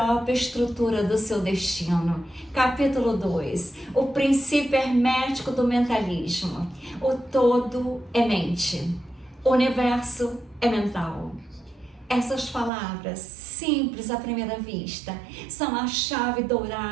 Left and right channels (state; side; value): drops out; left; at 12.7 s